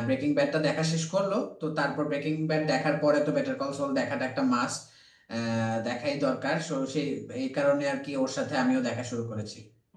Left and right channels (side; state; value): both; identical; correlation 1.00